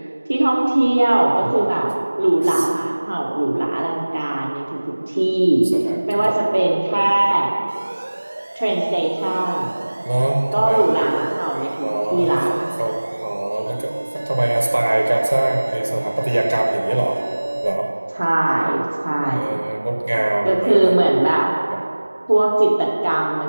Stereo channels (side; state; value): both; inverted; correlation -1.00